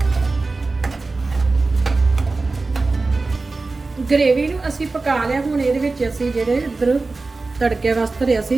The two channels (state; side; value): quieter; left; 3.6 dB